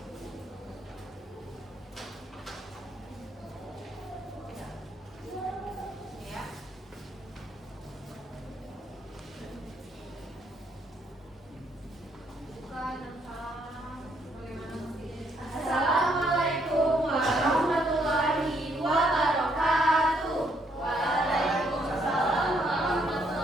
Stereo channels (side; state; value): both; normal; correlation 0.71